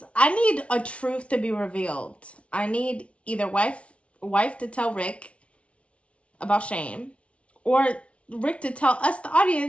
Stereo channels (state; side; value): late; right; 0.062 ms